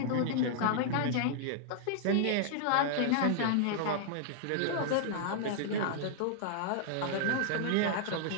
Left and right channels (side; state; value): both; different; correlation -0.01